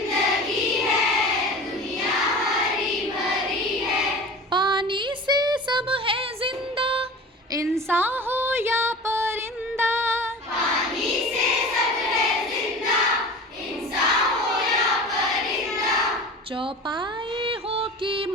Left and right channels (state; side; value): normal; both; correlation 0.36